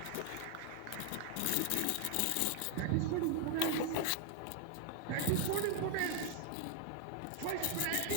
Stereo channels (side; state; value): both; different; correlation 0.00